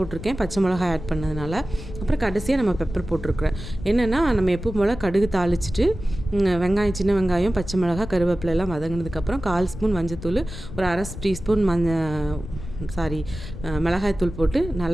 பச்சை மிளகாய் ஆட் பண்ணதுனால. அப்புறம் கடைசியாக நம்ம பெப்பர் போட்டிருக்கிறேன். என்னென்னா நம்ம எப்போ போல் கடுகு தாளிச்சிட்டு வெங்காயம், சின்ன வெங்காயம், பச்சை மிளகாய், கருவேப்பிலை எல்லாம் வதங்கினதுக்கப்புறம் 1/4 ஸ்பூன் மஞ்சத்தூள், ஒரு அரை டீஸ்பூன் மிளகாய்த்தூள் போட்டு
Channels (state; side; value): noise; left; rumble, 10 dB below the sound